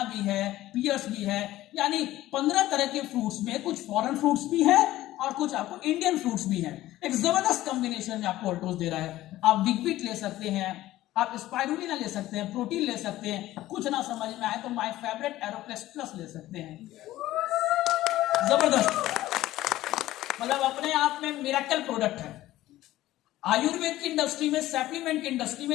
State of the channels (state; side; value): quieter; right; 15.4 dB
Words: भी है, पियर्स भी है, यानी 15 तरह के फ्रूट्स में कुछ फॉरेन फ्रूट्स भी है और कुछ आपको इंडियन फ्रूट्स भी है। एक जबरदस्त कॉम्बिनेशन में आपको ऑल्टोस दे रहा है। आप बिग बीट ले सकते हैं, आप स्पाइरुलिना ले सकते हैं, प्रोटीन ले सकते हैं, कुछ ना समझ में आए तो माय फेवरेट एरोप्लेस प्लस ले सकते हैं। जबरदस्त, मतलब अपने आप में मिरेकल प्रोडक्ट है। आयुर्वेद की इंडस्ट्री में, सप्लीमेंट की इंडस्ट्री